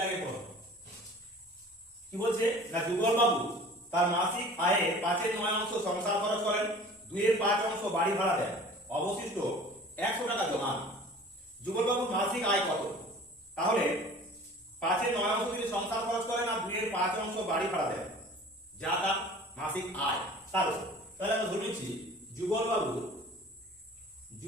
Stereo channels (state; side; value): normal; both; correlation 0.44